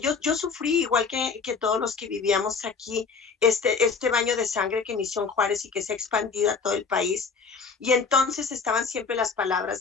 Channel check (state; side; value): quieter; right; 5.3 dB